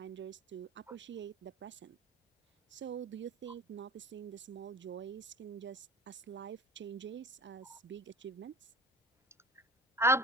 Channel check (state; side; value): normal; both; correlation 0.40